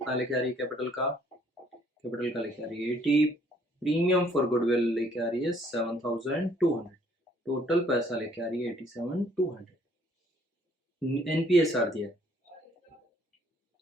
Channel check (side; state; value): both; normal; correlation 0.63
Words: लेके आ रही है कैपिटल का लेके आ रही है 80। प्रीमियम फॉर गुडविल लेके आ रही है 7,200। टोटल पैसा लेके आ रही है 87,200। एनपीएसआर दिया है,